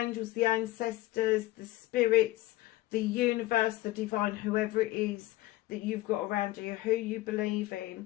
the ancestors, the spirits, the universe, the divine, whoever it is that you've got around you, who you believe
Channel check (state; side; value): quieter; right; 17.4 dB